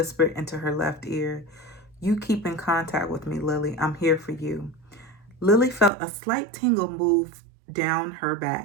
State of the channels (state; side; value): drops out; left; at 5.9 s